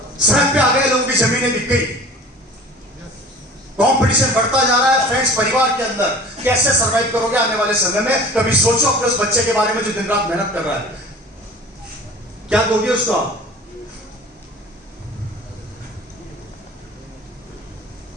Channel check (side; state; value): both; normal; correlation 0.43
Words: सड़क पे आ गए, लोगों की जमीनें बिक गई। कंपटीशन बढ़ता जा रहा है फ्रेंड्स परिवार के अंदर। कैसे सरवाइव करोगे आने वाले समय में? कभी सोचो अपने उस बच्चे के बारे में जो दिन रात मेहनत कर रहा है, क्या दोगे उसको आप?